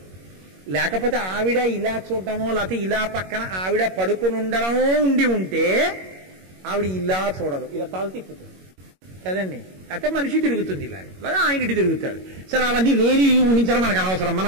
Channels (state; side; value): late; left; 21 ms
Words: లేకపోతే ఆవిడ ఇలా చూడటమో లేకపోతే ఇలా పక్కన ఆవిడ పడుకుని ఉండడమో ఉండి ఉంటే ఆవిడ ఇలా చూడదు, ఇలా తల తిప్పుతుంది కదండి. అయితే మనిషి తిరుగుతుంది ఇలా, లేదా ఆయన ఇటు తిరుగుతాడు. సరే, అవన్నీ లేని ఊహించడం మనకు అనవసరం, మన